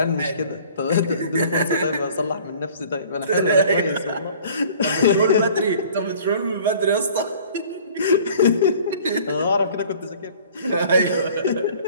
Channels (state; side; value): inverted; both; correlation -0.50